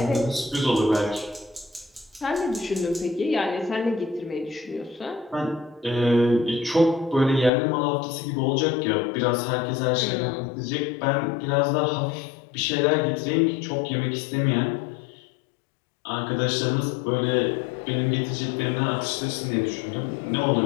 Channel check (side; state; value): right; drops out; at 7.5 s